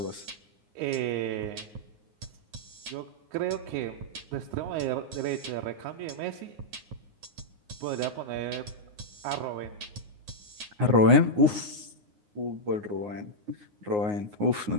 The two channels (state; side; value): late; left; 9.6 ms